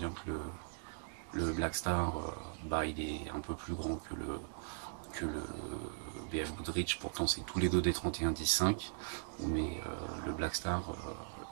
que le Black Star bah, il est un peu plus grand que le BF Goodrich. Pourtant c'est tous les deux des 31-10-5, mais le Black Star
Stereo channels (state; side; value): silent; left; digital silence